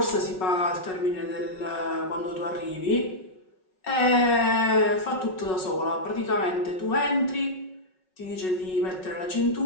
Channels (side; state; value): right; late; 5.4 ms